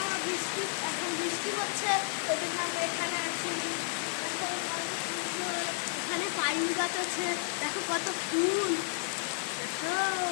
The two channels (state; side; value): silent; right; digital silence